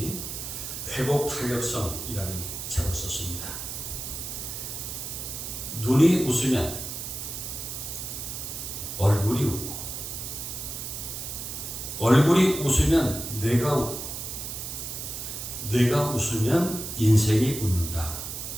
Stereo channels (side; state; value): right; noise; hiss, 6 dB below the sound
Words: 회복 탄력성이라는 책을 썼습니다. 눈이 웃으면 얼굴이 웃고 얼굴이 웃으면 뇌가 웃고 뇌가 웃으면 인생이 웃는다.